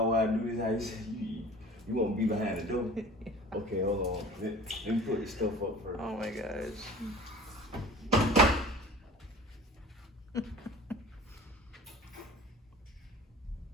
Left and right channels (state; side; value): normal; both; correlation 0.43